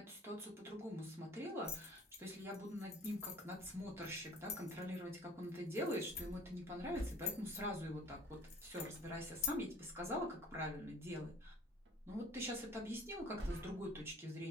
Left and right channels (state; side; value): normal; both; correlation 0.50